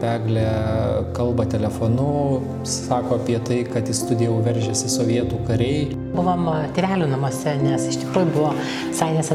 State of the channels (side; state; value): both; identical; correlation 1.00